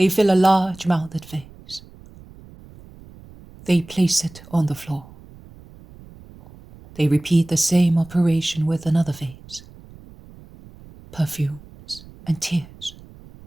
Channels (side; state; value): right; noise; rumble, 21 dB below the sound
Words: fill a large-mouthed vase. They place it on the floor. They repeat the same operation with another vase. Perfumes and tears